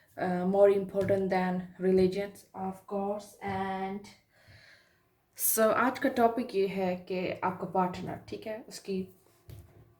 more important than religions of course. And so आज का टॉपिक ये है कि आपका पार्टनर, ठीक है, उसकी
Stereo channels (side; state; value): both; identical; correlation 1.00